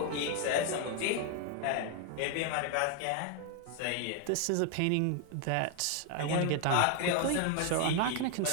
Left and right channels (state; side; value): different; both; correlation 0.01